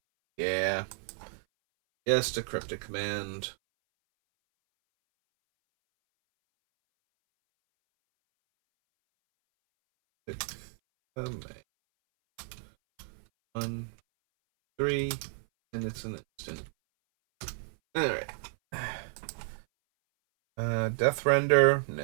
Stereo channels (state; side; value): silent; left; 57 dB below the other